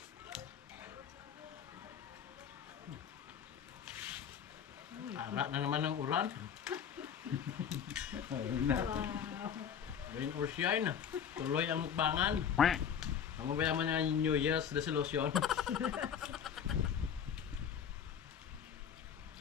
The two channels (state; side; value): quieter; right; 8.1 dB